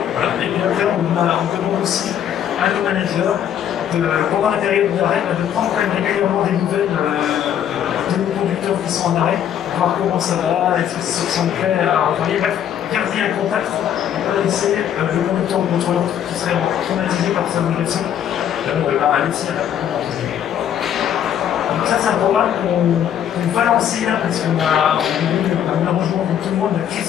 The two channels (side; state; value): right; quieter; 9.7 dB